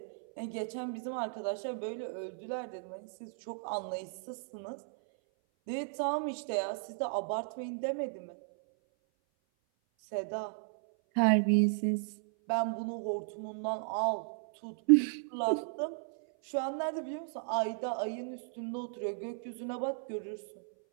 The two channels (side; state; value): left; silent; 55 dB below the other